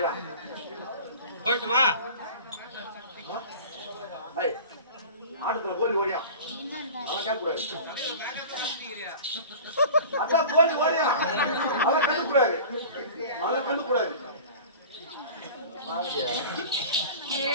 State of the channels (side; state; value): both; inverted; correlation -0.38